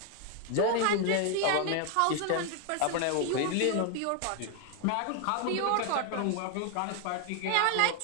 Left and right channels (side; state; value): both; different; correlation 0.00